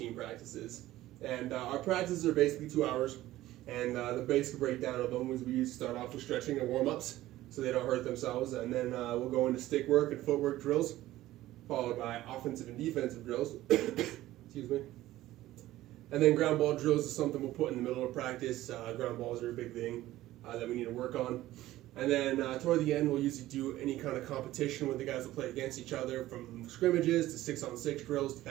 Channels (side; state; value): left; quieter; 15.6 dB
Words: practices. And our practices are basically 2 hours, and the basic breakdown of them is we usually start off with stretching and warm-ups so they don't hurt themselves, and then we'll go into stick work and footwork drills, followed by offensive and defensive drills. Excuse me. And then ground ball drills is something we'll put in the middle of practice. Ground balls are a big thing that we need to work on. And then toward the end, we'll usually do any kind of competition where the guys will play against each other, from scrimmages to 6-on-6 drills to